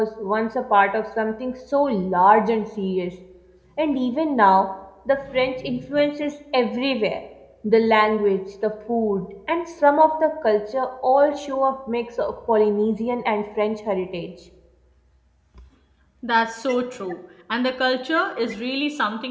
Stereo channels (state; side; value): identical; both; correlation 1.00